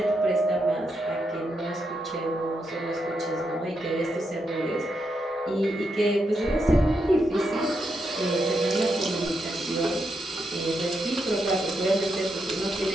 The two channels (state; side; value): normal; both; correlation 0.82